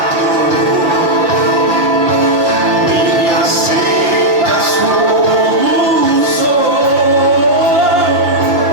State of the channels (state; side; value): late; left; 5.6 ms